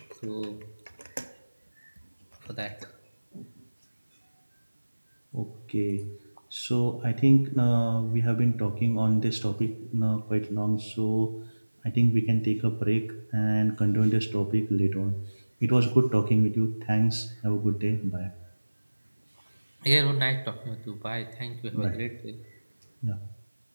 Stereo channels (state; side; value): inverted; both; correlation -1.00